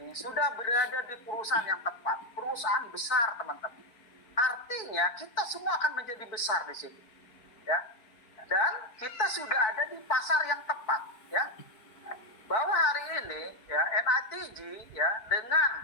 ini sudah berada di perusahaan yang tepat, perusahaan besar teman-teman. Artinya kita semua akan menjadi besar di sini, ya. Dan kita sudah ada di pasar yang tepat, ya. Bahwa hari ini, ya, NITG, ya, dengan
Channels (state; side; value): late; right; 4.6 ms